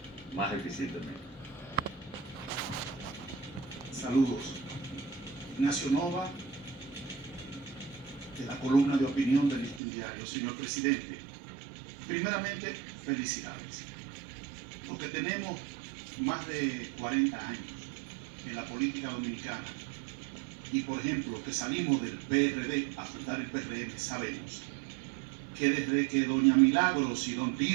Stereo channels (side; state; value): left; drops out; at 9.8 s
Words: más eficientemente. Saludos. Ignacio Nova, de la columna de opinión del Listín Diario. Señor presidente, primeramente, felicidades. Los que tenemos más de 40 años en la política dominicana y, por ejemplo, que salimos del PRD a fundar el PRM, sabemos que desde que doña Milagros y don